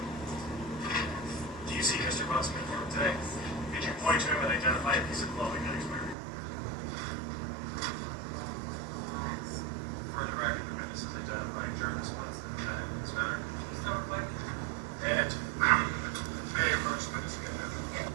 Do you see Mr. Bunson in court today? Did you point to him and identify a piece of clothing that he's wearing? For the record, the witness is identifying Jarvis Bunson, the defendant in this matter. And may I approach the witness again?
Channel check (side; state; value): left; drops out; at 6.2 s